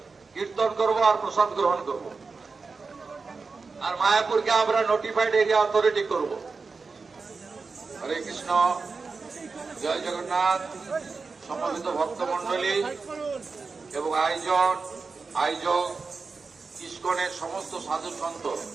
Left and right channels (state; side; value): quieter; left; 4.5 dB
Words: কীর্তন করব আর প্রসাদ গ্রহণ করব। আর মায়াপুরকে আমরা নোটিফাইড এরিয়া অথরিটি করব। হরে কৃষ্ণ, জয় জগন্নাথ। সমবেত ভক্তমন্ডলী এবং আয়োজক ইস্কনের সমস্ত সাধু সন্ত,